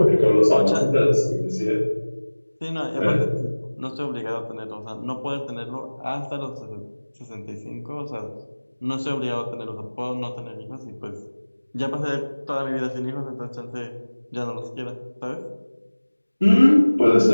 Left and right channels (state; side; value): inverted; both; correlation -1.00